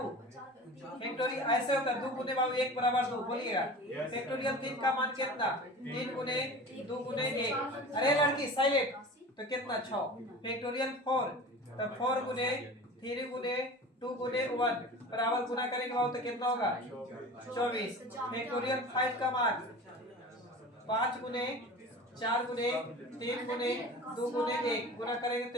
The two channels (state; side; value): normal; both; correlation 0.37